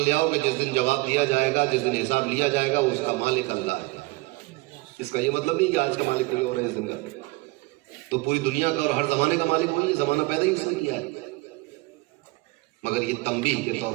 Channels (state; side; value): quieter; left; 23.5 dB